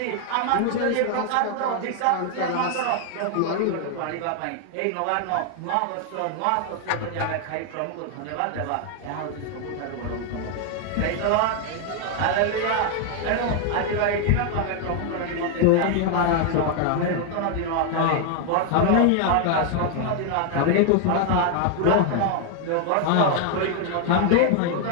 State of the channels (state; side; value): different; both; correlation 0.00